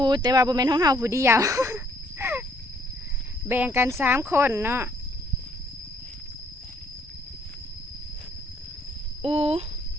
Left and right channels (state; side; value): normal; both; correlation 0.65